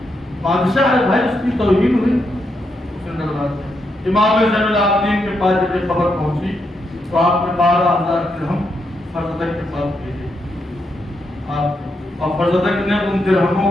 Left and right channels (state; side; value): normal; both; correlation 0.81